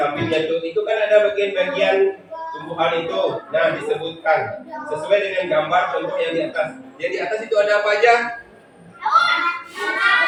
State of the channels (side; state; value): both; identical; correlation 1.00